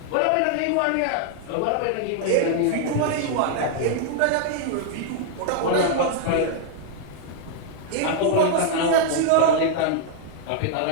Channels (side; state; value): both; different; correlation 0.00